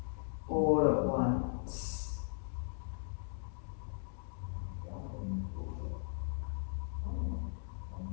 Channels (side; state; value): right; silent; digital silence